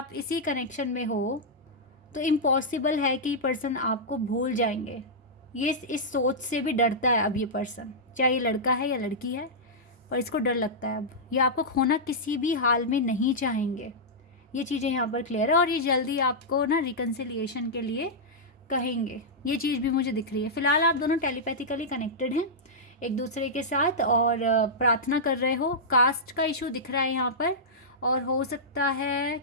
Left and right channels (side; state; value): both; normal; correlation -0.10